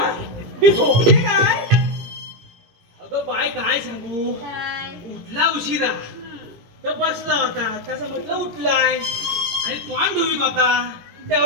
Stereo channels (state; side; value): late; left; 18 ms